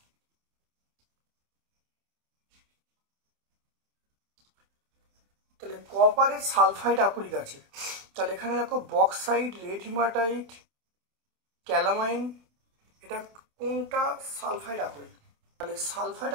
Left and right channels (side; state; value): left; late; 27 ms